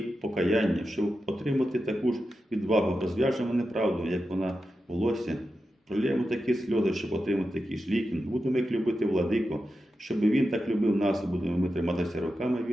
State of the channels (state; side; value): normal; both; correlation 0.90